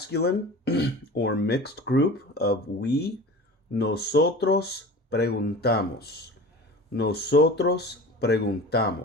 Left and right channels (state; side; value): normal; both; correlation 0.37